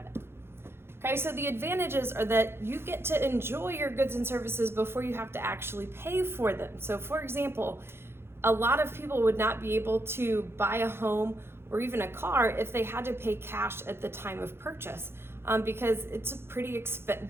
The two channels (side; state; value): left; late; 0.12 ms